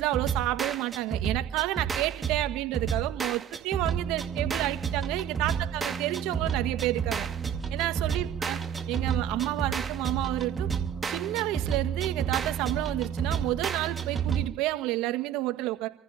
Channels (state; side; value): quieter; left; 9.8 dB